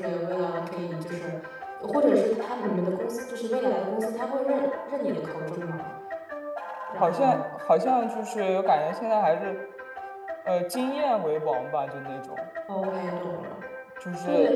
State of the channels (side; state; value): both; identical; correlation 1.00